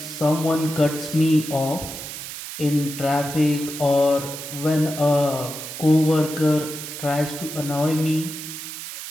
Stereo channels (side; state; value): right; noise; hiss, 9 dB below the sound